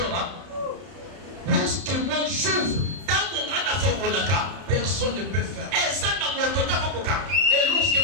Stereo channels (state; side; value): late; left; 31 ms